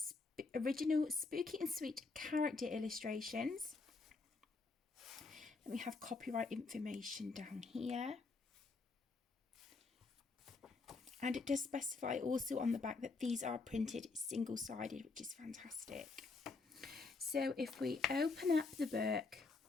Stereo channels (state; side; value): quieter; right; 4.0 dB